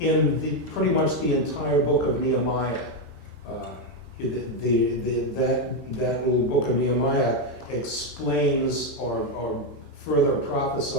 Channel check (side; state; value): both; normal; correlation 0.06